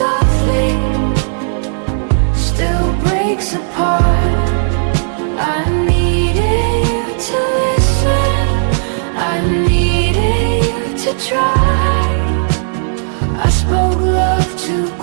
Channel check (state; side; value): silent; left; digital silence